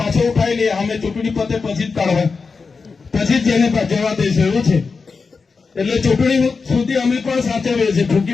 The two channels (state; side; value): quieter; right; 4.7 dB